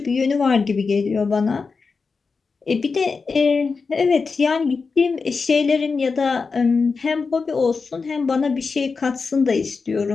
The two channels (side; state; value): right; quieter; 4.7 dB